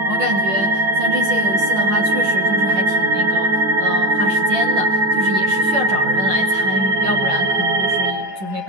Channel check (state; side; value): late; left; 11 ms